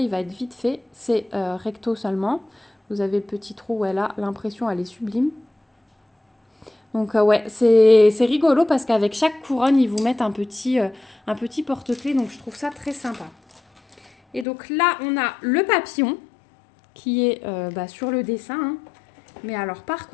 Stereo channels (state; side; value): drops out; right; at 14.5 s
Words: il va être vite fait. C'est recto seulement. Vous avez le petit trou où elle a l'impression, elle est sublime. Donc, ouais, c'est rigolo parce qu'avec chaque couronne, ils vous mettent un petit porte-clés. Donc, je trouve ça très sympa. Et donc, là, on a le papillon qui est sur le dessin. Hein. Mais alors, par